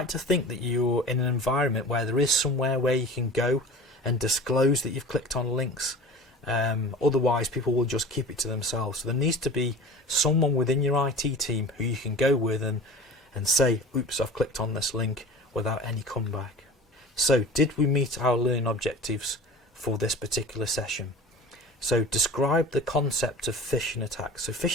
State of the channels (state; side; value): normal; both; correlation 0.38